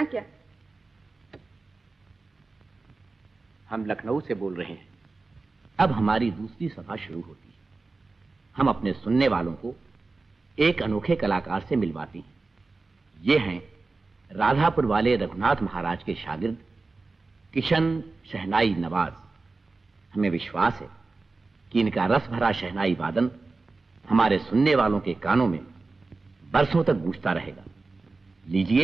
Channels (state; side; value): quieter; left; 3.7 dB